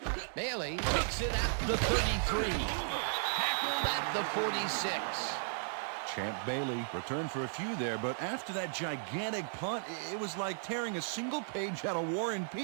Bailey takes it at the 33. Tackled at the 46. Champ Bailey returned for a few there, but after that gigantic punt, it was like tearing a single page out of War and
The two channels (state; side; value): silent; left; 54 dB below the other